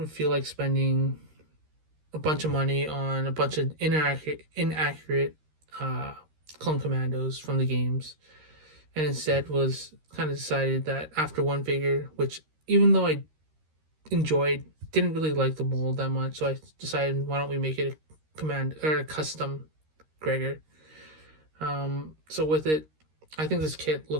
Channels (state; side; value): late; left; 13 ms